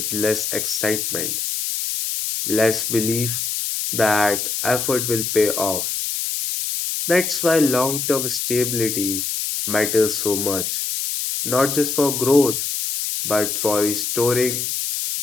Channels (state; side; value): noise; left; hiss, 2 dB below the sound